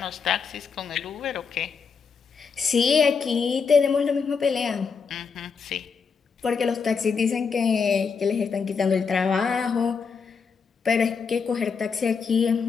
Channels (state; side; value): quieter; right; 5.6 dB